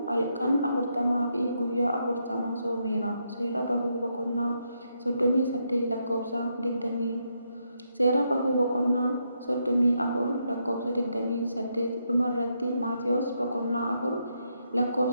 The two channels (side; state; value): both; inverted; correlation -0.79